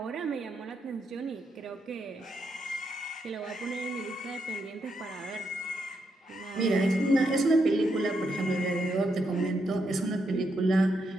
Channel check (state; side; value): normal; both; correlation 0.81